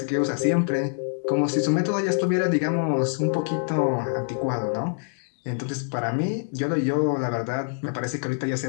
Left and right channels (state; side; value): silent; right; digital silence